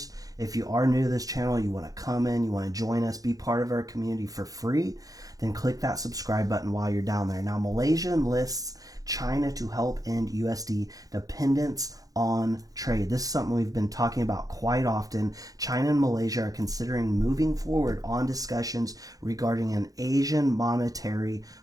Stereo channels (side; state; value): left; late; 0.17 ms